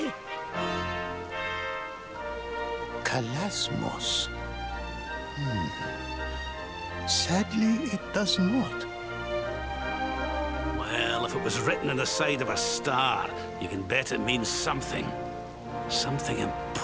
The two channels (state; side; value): identical; both; correlation 1.00